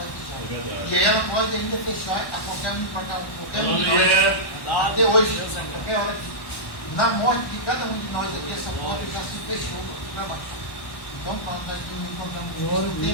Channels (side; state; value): right; late; 1.1 ms